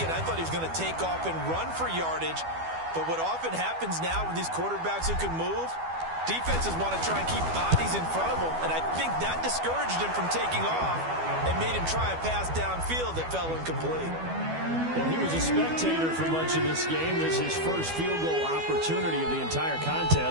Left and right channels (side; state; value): left; late; 12 ms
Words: I thought he was going to take off and run for yardage. But what often happens now with these quarterbacks who can move, defenses want to try and keep bodies in front of them, and I think that discouraged him from taking off and made him try a pass downfield that fell incomplete. Well, he was a spectator for much of this game. This is his first field goal opportunity of the entire